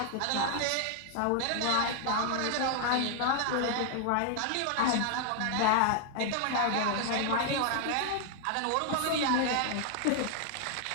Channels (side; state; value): both; different; correlation 0.00